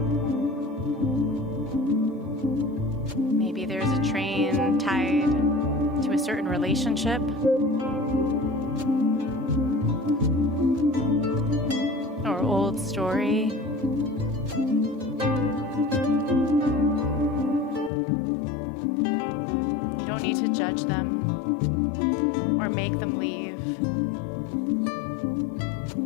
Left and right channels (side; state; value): right; drops out; at 17.9 s